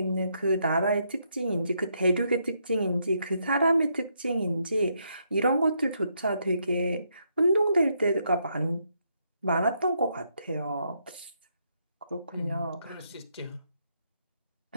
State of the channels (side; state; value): both; inverted; correlation -0.76